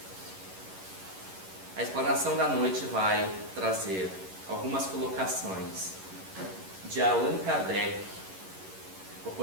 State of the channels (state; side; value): late; left; 11 ms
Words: a explanação da noite vai trazer algumas colocações de Allan Kardec, o